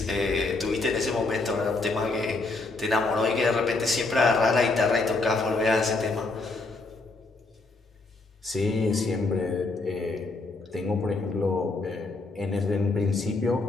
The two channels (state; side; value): quieter; right; 3.4 dB